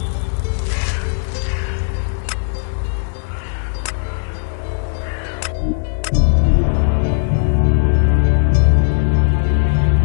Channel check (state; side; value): silent; right; digital silence